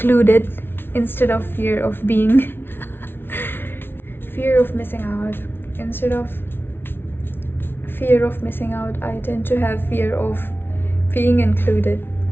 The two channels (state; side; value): late; right; 0.11 ms